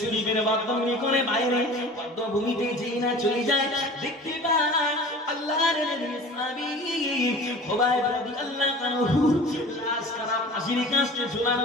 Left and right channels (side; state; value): both; normal; correlation 0.41